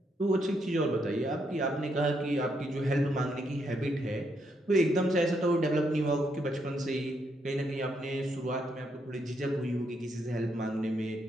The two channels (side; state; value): both; normal; correlation 0.77